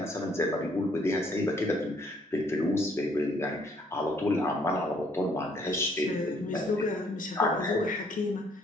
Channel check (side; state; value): both; normal; correlation 0.65